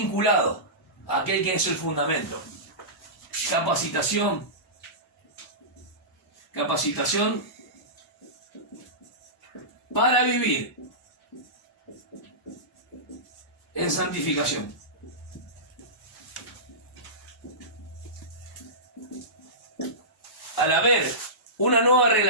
a aquel que es el fundamento. Capacitación para vivir en santificación. Al haber una nueva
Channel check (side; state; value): both; normal; correlation -0.19